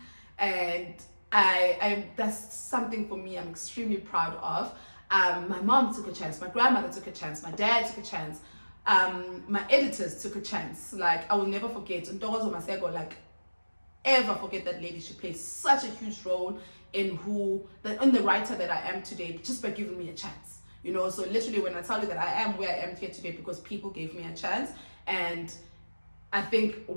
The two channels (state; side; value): inverted; both; correlation -1.00